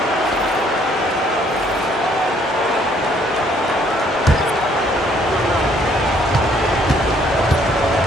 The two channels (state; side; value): normal; both; correlation 0.64